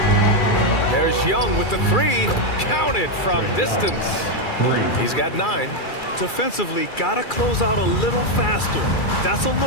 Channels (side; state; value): right; late; 2.3 ms